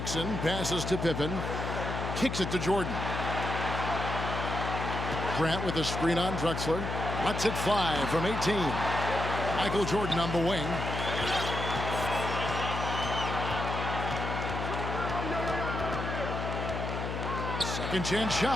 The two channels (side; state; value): left; noise; hum, 4 dB below the sound